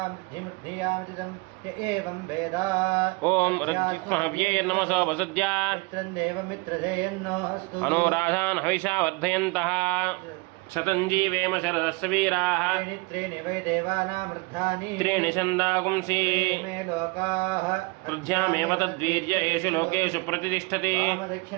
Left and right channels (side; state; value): left; quieter; 27.4 dB